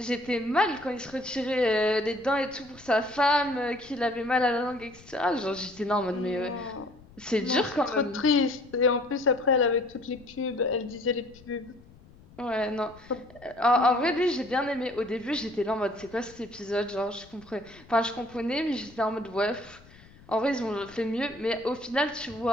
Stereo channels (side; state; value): left; noise; rumble, 24 dB below the sound